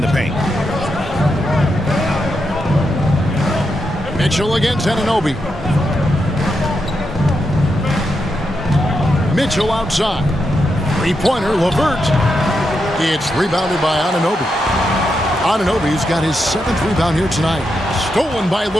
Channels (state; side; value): normal; both; correlation 0.84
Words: the paint. Mitchell against Anunoby. Mitchell outside. Three-pointer, LeVert. It's rebounded by Anunoby. Anunoby's got his 7th rebound here tonight. Stolen by